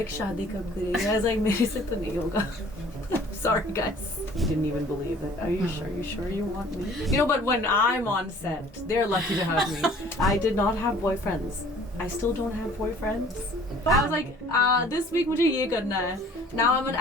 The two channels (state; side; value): normal; both; correlation 0.52